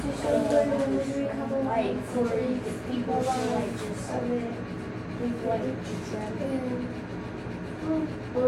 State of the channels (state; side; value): identical; both; correlation 1.00